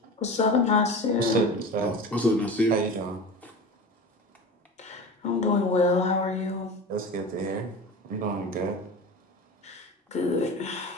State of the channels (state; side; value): normal; both; correlation 0.32